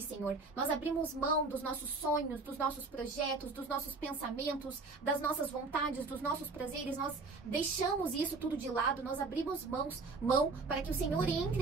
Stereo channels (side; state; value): left; quieter; 3.9 dB